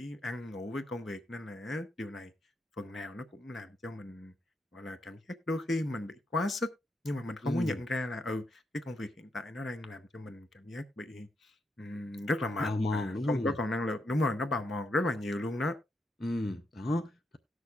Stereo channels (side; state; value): both; normal; correlation 0.81